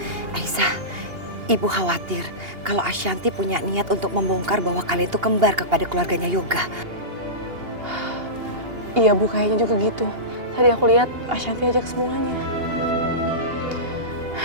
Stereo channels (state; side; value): late; left; 2.8 ms